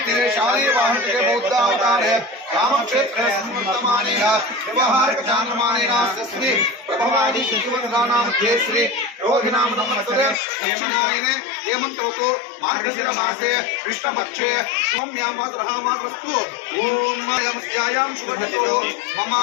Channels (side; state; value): right; drops out; at 10.4 s